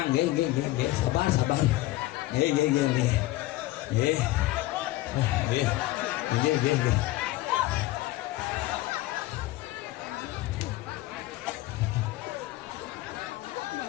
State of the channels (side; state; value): right; quieter; 17.4 dB